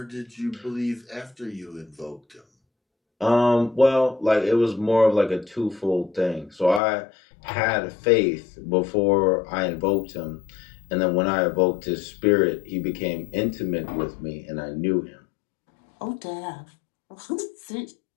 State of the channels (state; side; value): drops out; right; at 6.8 s